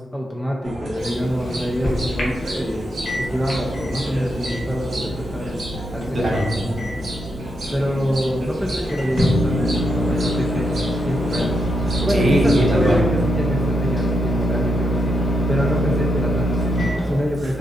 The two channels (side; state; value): both; normal; correlation 0.81